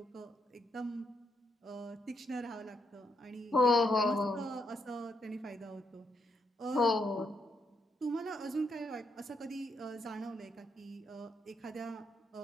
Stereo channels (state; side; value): normal; both; correlation 0.78